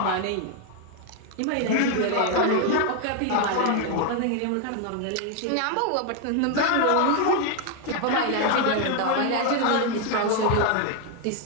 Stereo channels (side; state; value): both; different; correlation 0.01